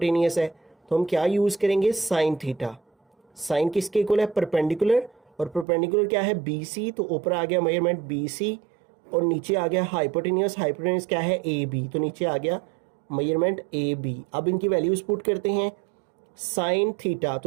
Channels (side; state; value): left; drops out; at 5.7 s